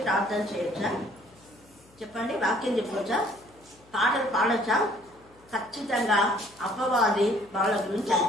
ప్రార్థన చేయొచ్చా? చెప్పండి, వాక్యం చెప్పవచ్చా, పాటలు పాడొచ్చా? ఖచ్చితంగా అపవాది వాళ్ళ గురించి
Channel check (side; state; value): left; noise; hum, 28 dB below the sound